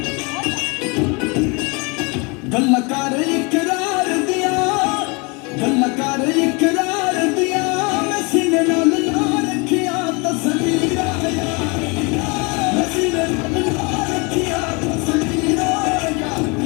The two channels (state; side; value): quieter; right; 29.5 dB